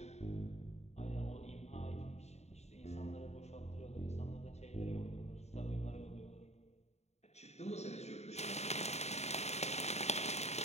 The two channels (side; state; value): right; late; 0.32 ms